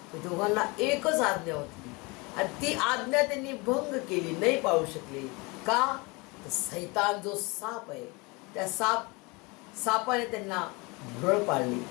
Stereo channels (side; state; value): right; quieter; 26.7 dB